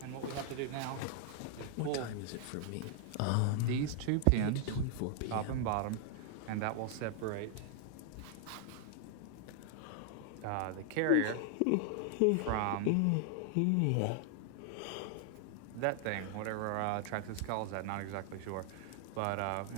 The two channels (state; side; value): different; both; correlation 0.00